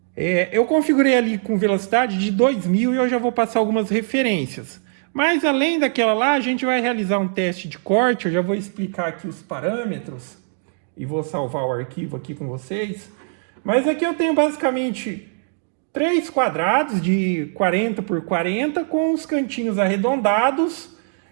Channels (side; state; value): left; silent; digital silence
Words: eu configurei ali com velocidade de 2000 e eu já vou passar algumas referências. Mas além daquela lá, a gente vai realizar um teste de corte. Eu já vou explicar aqui os parâmetros e vou salvar o arquivo aqui com vocês. Mas aqui eu tenho basicamente 3 quadrados de 40 por 40 com os cantinhos arredondados